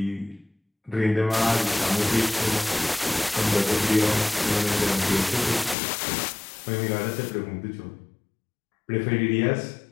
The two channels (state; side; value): drops out; right; at 5.8 s